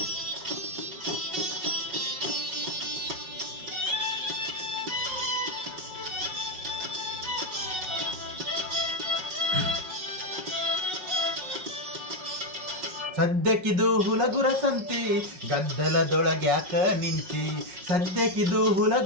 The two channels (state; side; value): late; left; 5.4 ms